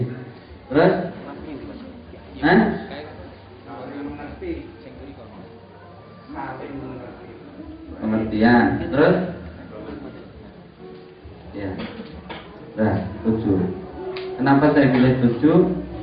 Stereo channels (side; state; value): both; identical; correlation 1.00